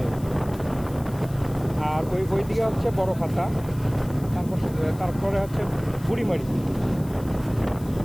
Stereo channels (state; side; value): noise; left; hiss, 21 dB below the sound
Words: আর ওই দিকে হচ্ছে বড় খাতা, তারপরে হচ্ছে বুড়িমারি।